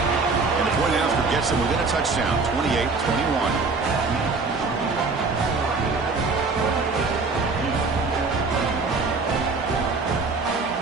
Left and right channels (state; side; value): quieter; left; 4.1 dB